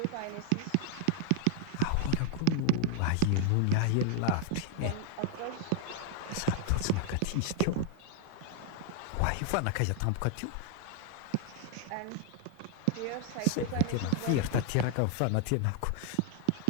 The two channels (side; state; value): both; different; correlation 0.00